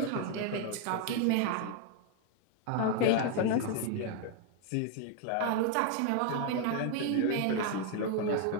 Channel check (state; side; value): different; both; correlation 0.00